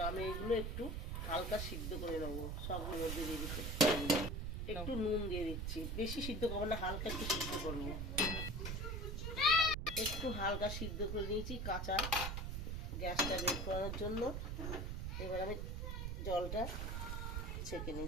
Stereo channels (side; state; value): right; noise; rumble, 2 dB below the sound